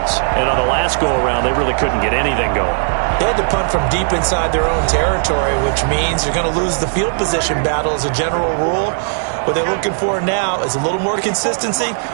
And on the last go-around, they really couldn't get anything going. They had to punt from deep inside their own territory, which means you're going to lose the field position battle as a general rule. What they're looking for now is a little more consistency,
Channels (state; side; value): silent; left; 63 dB below the other